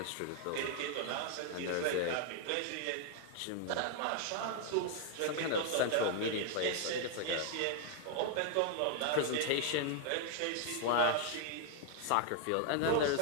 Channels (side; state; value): both; different; correlation 0.00